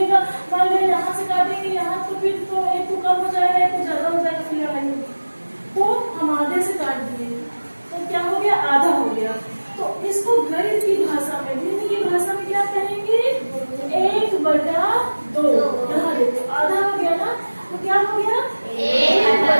मान लो यहाँ से काटेंगे यहाँ, तो फिर तो एक को कम हो जाएगा एक को ज्यादा हो जाएगा, फिर लड़ाई होगी। तो हम आधे से काट दिए तो क्या हो गया, आधा हो गया। तो इसको गणित की भाषा में, गणित की भाषा में क्या कहेंगे, 1/2। यहाँ देखो आधा हो गया ना, तो क्या हो गया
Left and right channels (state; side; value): inverted; both; correlation -1.00